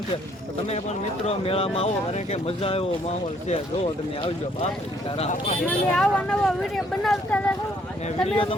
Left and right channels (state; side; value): normal; both; correlation 0.65